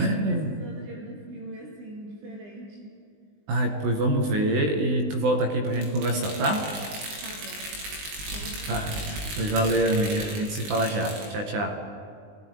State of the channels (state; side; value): late; left; 20 ms